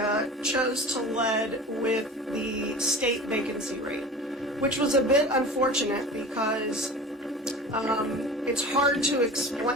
chose to lead with the state vacancy rate, which was a bit unfortunate because it's hard to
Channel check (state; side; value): normal; both; correlation 0.37